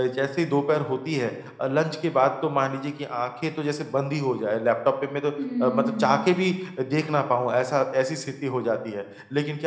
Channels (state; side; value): identical; both; correlation 1.00